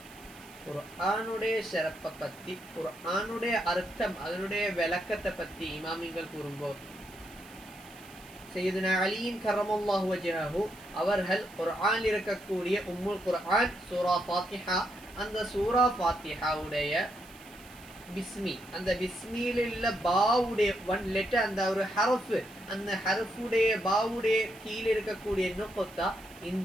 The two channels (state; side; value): noise; right; hiss, 23 dB below the sound